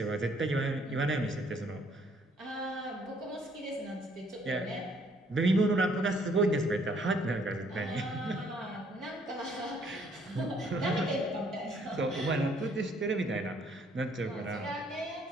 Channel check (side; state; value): both; normal; correlation 0.64